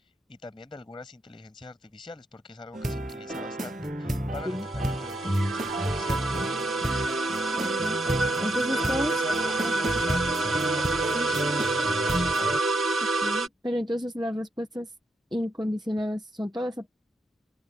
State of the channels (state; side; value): normal; both; correlation 0.80